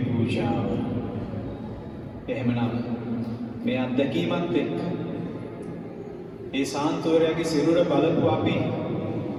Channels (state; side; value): identical; both; correlation 1.00